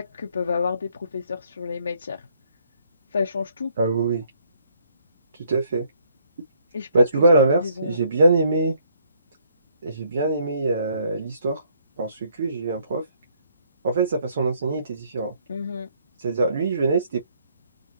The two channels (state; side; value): inverted; both; correlation -0.67